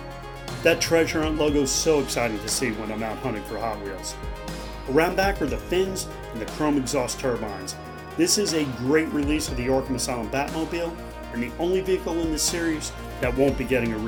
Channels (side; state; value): both; identical; correlation 1.00